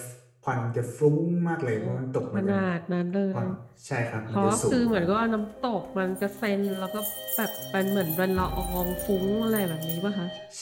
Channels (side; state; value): both; identical; correlation 1.00